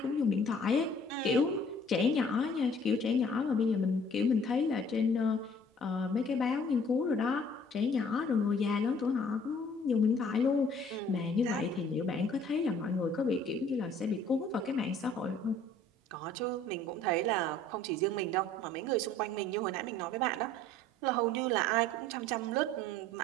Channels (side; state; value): both; normal; correlation 0.55